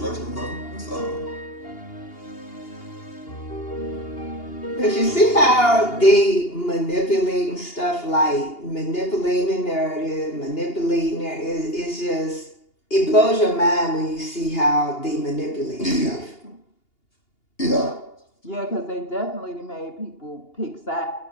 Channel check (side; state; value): right; late; 2.8 ms